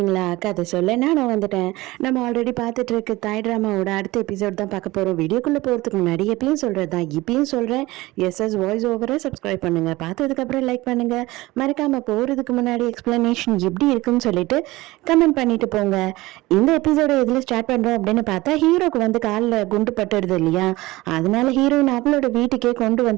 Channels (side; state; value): left; quieter; 19.7 dB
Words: கதை சொல்ல நான் வந்துட்டேன். நம்ம ஆல்ரெடி பார்த்துட்டு இருக்க தாய் ட்ராமாவோட அடுத்த எபிசோட் தான் பார்க்க போகிறோம். வீடியோக்குள்ளே போகிறதுக்கு முன்னாடி எப்பயும் சொல்கிறது தான் இப்பயும் சொல்கிறேன். எஸ்எஸ் வாய்ஸ் ஓவரை சப்ஸ்கிரைப் பண்ணுங்கள், பார்த்ததுக்கப்புறம் லைக் பண்ணுங்கள், மறக்காமல் போகிறதுக்கு முன்னாடி எக்ஸ்ப்ளனேஷன் எப்படி இருக்குன்னு சொல்லிட்டு கமெண்ட் பண்ணிட்டு போங்க. இந்த எபிசோட எதில் ஸ்டார்ட் பண்ணுறோம் அப்படின்னு பார்த்தா, ஹீரோக்கு வந்து காலில் குண்டு பட்டுடுது இல்லையா, அதனால ஹீரோயின் அவளோட வீட்டுக்கே கொண்டு